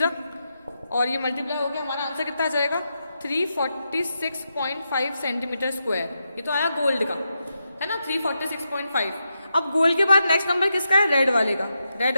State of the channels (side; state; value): both; inverted; correlation -0.86